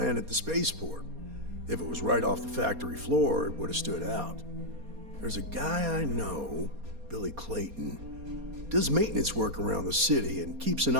at the spaceport. If it was right off the factory floor, it would have stood out. There's a guy I know, Billy Clayton, does maintenance work around the city and keeps an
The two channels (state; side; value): late; left; 4.2 ms